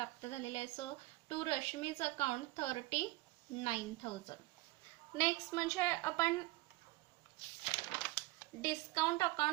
झालेले आहे. So to Rashmi's account 39,000. Next म्हणजे आपण डिस्काउंट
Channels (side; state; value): left; quieter; 20.3 dB